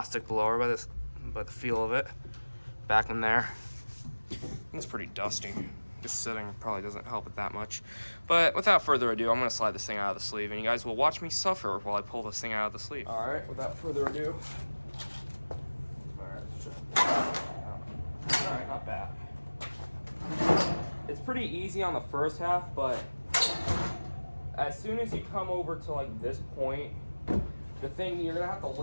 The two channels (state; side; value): inverted; both; correlation -1.00